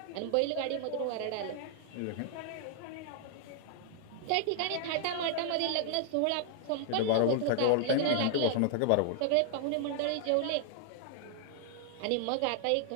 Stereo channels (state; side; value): different; both; correlation 0.00